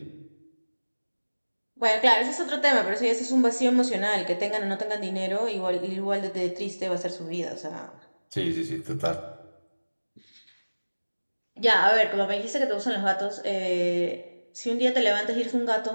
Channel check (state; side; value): inverted; both; correlation -1.00